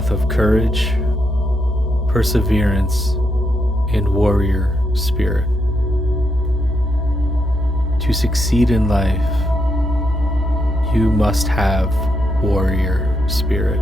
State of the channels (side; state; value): both; normal; correlation 0.80